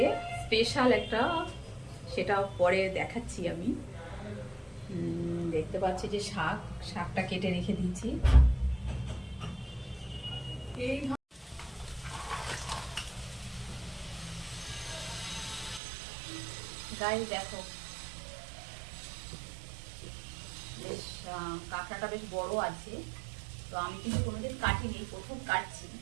স্পেশাল একটা, সেটা পরে দেখাচ্ছি আমি। দেখতে পাচ্ছি যে শাকটা কেটে রেখে দিয়েছি। এই গায়ে দেখো, বেশ কাঁকড়াটা বেশ বড় আছে। তো আমি কিন্তু কোনোদিন কাটিনি, প্রথম কাটছি।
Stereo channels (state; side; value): drops out; left; at 15.8 s